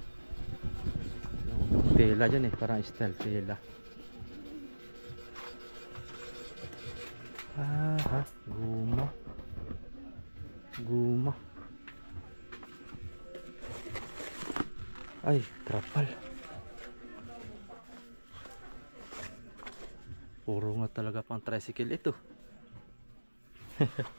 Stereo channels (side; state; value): both; inverted; correlation -1.00